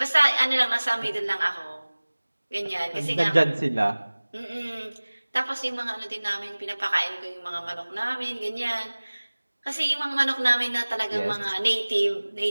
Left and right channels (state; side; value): inverted; both; correlation -1.00